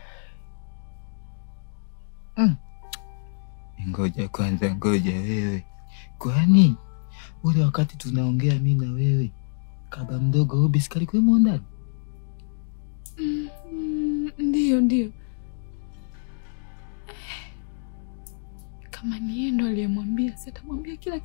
Ngoja kwanza, ngoja wewe. Kwani ule wakati tunaongea mimi na wewe, kaba mdogo Obi sikali kwa ndani? Ndio. Kama ni yeye ndo aliyemwambia, sitamwambia kila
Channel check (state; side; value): silent; right; digital silence